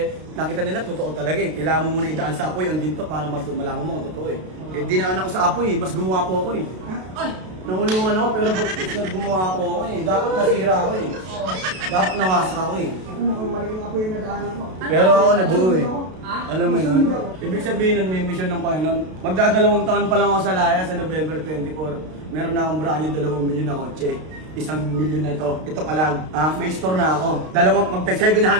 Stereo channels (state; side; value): late; left; 32 ms